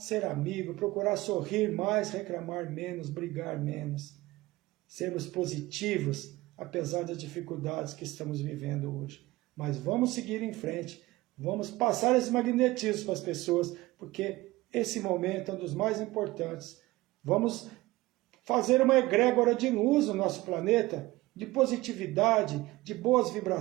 amigo, procurar sorrir mais, reclamar menos, brigar menos. Sermos positivos, apesar das dificuldades que estamos vivendo hoje. Mas vamos seguir em frente, vamos passar esse magnetismo para as pessoas, porque esse momento é um dos mais importantes. Vamos fazer uma egrégora de luz no nosso planeta, de positividade, de boas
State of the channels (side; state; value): left; quieter; 19.3 dB